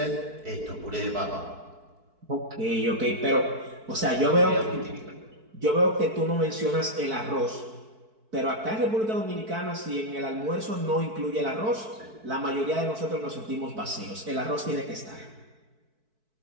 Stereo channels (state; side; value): late; left; 4.6 ms